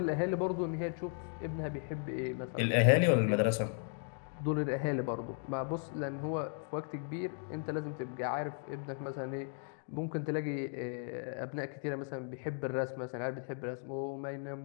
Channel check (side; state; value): right; silent; 54 dB below the other